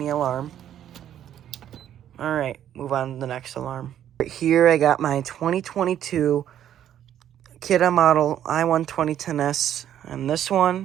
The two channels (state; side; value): quieter; left; 10.6 dB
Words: alarm. Alright, move on to the next alarm. Right here, I got my 2022 Kidde model I-12010S, and this